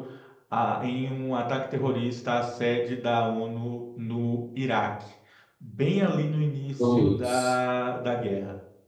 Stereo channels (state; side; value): identical; both; correlation 1.00